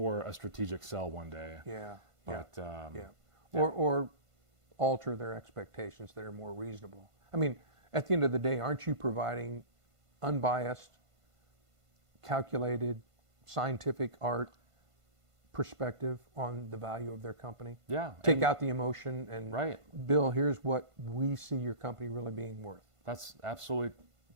a strategic sell one day. Yeah. But Or alter their expectations that are more reasonable. I mean, at the end of the day, aren't you providing unbiased, calculated, scientific art perspective on the value of their company? Yeah. Take out the emotion and, right. Bill, here's what we see your company really being worth. That's absolutely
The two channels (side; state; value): left; late; 1.5 ms